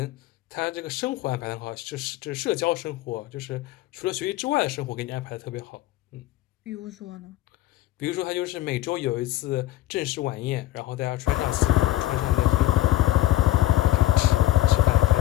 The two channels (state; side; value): quieter; right; 15.9 dB